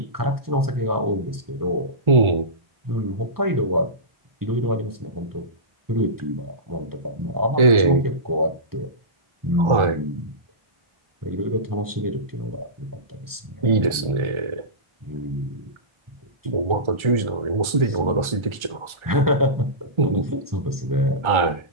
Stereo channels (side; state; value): left; late; 1.3 ms